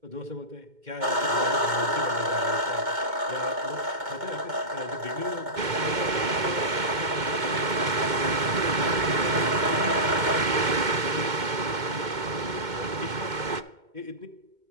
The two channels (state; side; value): late; left; 2.2 ms